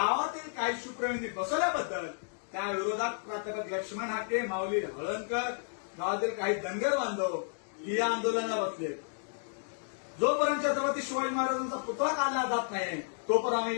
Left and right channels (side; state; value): right; silent; digital silence